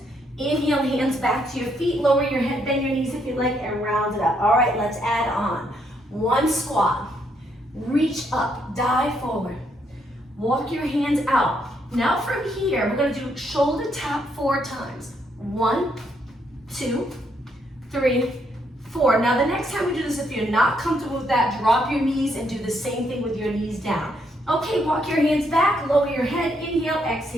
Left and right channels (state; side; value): normal; both; correlation 0.74